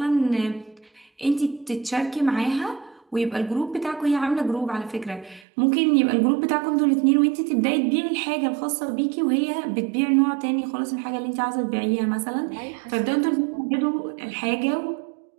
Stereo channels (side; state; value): left; drops out; at 5.5 s